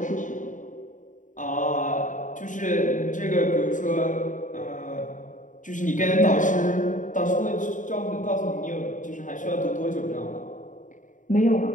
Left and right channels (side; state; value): right; late; 0.37 ms